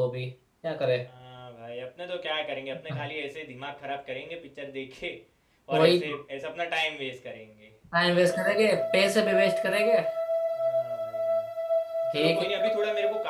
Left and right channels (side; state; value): both; identical; correlation 1.00